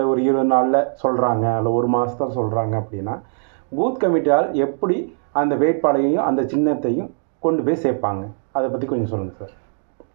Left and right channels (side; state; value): left; silent; digital silence